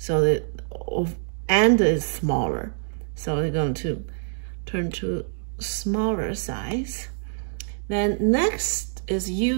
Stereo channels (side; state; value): left; silent; digital silence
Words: the end is smaller, so they're going to turn to smaller size. Then next is